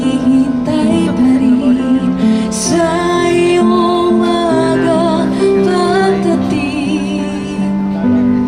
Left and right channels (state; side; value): identical; both; correlation 1.00